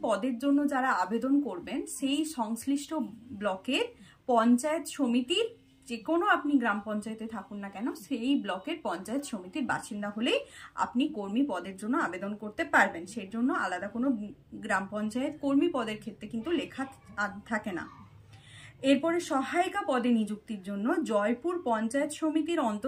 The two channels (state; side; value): identical; both; correlation 1.00